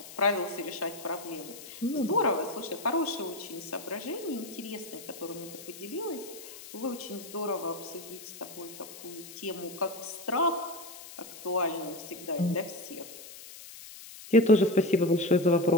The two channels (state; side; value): noise; left; hiss, 15 dB below the sound